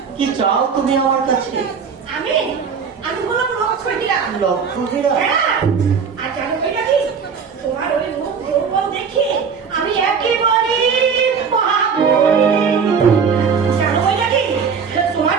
কি চাও তুমি আমার কাছে? আমি আমি বললাম লক্ষ্মীরা। লক্ষ্যহীরা? হ্যাঁ, আর জানো বৈরাগী, তোমার ওই মুখ রূপম দেখে আমি একেবারে জানো বৈরাগী,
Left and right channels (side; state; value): left; quieter; 6.2 dB